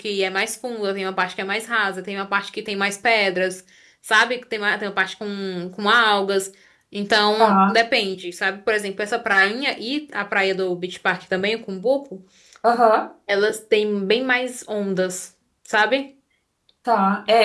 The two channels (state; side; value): identical; both; correlation 1.00